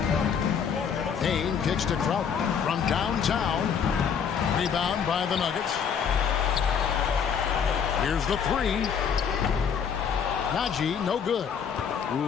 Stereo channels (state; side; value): quieter; right; 7.2 dB